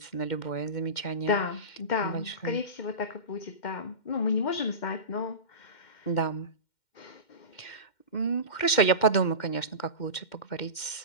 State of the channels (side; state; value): right; late; 2.1 ms